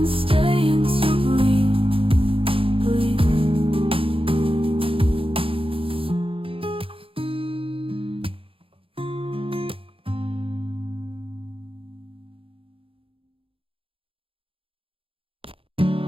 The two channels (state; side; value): late; left; 0.27 ms